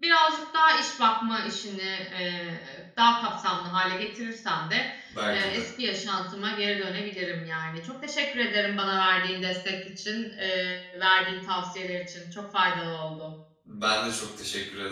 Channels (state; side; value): identical; both; correlation 1.00